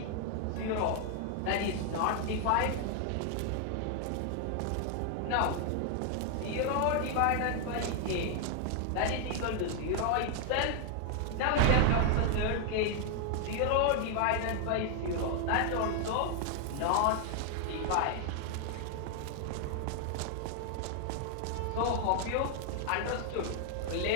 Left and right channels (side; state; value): both; different; correlation 0.00